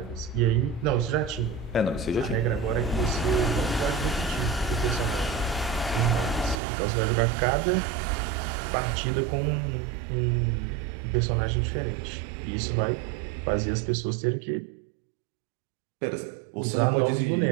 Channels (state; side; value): drops out; left; at 6.6 s